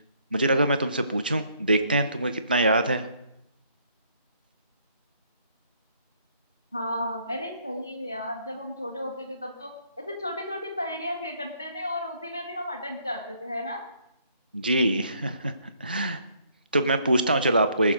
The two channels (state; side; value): inverted; both; correlation -0.67